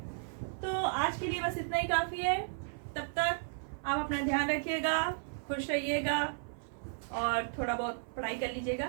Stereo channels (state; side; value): silent; left; 55 dB below the other